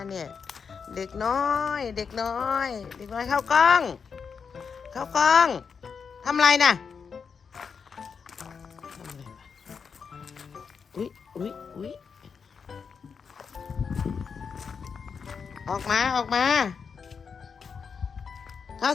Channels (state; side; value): quieter; right; 6.0 dB